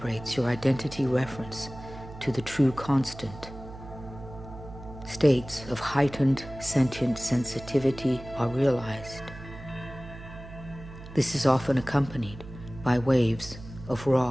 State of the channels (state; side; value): noise; right; hum, 14 dB below the sound